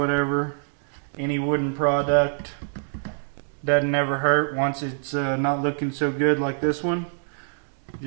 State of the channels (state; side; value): silent; left; digital silence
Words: Any wooden product doesn't ever hurt once it's not looking so good like this one.